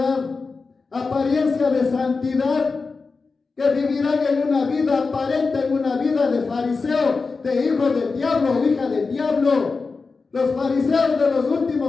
apariencia de santidad, que vivirán en una vida aparente, en una vida de fariseo, de hijo del diablo o hija del diablo. Los fariseos de los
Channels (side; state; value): right; quieter; 4.3 dB